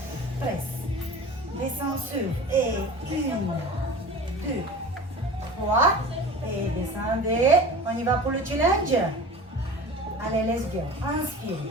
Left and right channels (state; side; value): normal; both; correlation 0.37